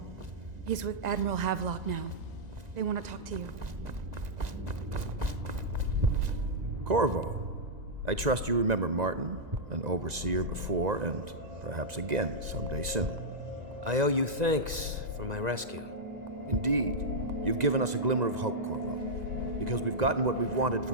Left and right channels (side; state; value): left; late; 1.9 ms